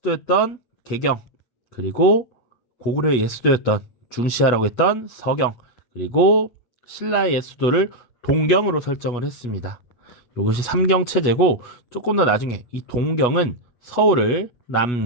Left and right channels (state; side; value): late; right; 8.2 ms